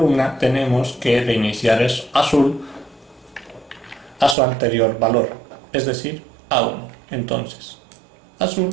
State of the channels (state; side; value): drops out; left; at 4.4 s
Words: tenemos que reiniciar el azul a su anterior valor, es decir, a 1. Entonces, azul